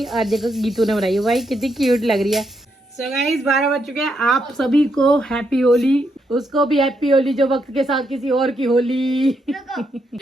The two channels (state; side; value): normal; both; correlation 0.79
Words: और देखो गीतू ने बनाई है। भाई कितनी क्यूट लग रही है। सो गाइस 12 बज चुके हैं। आप सभी को हैप्पी होली, उसको भी हैप्पी होली जो वक्त के साथ किसी और की होली।